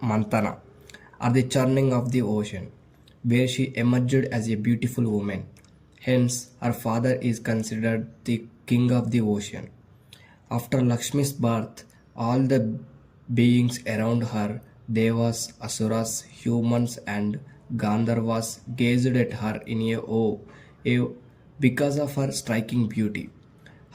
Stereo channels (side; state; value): both; identical; correlation 1.00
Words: Mantana, or the churning of the ocean, where she emerged as a beautiful woman. Hence, her father is considered the king of the ocean. After Lakshmi's birth, all the beings around her, devas, asuras, humans, and Gandharvas, gazed at her in awe because of her striking beauty.